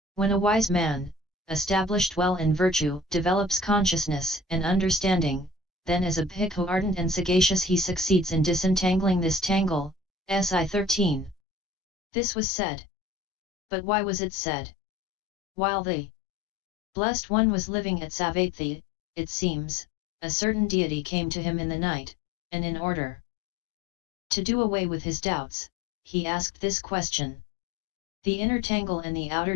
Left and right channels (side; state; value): right; drops out; at 11.4 s